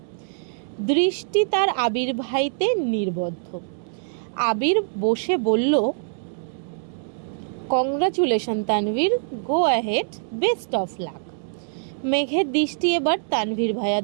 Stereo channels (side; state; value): left; silent; digital silence